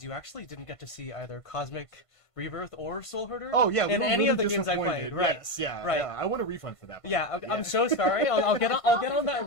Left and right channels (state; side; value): late; right; 1.5 ms